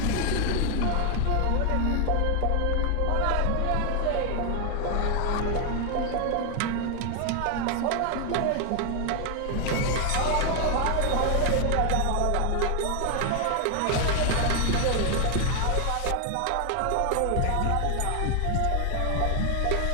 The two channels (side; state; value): both; different; correlation 0.00